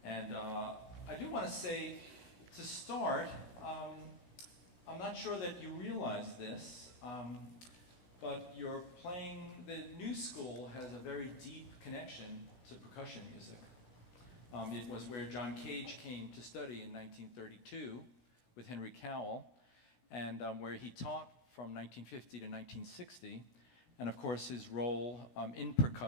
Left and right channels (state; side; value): late; right; 16 ms